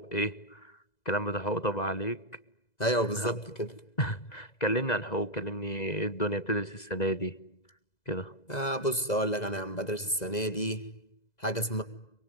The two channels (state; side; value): late; right; 2.0 ms